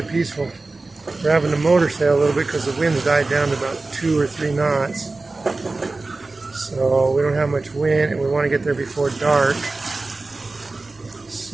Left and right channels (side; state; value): left; quieter; 3.4 dB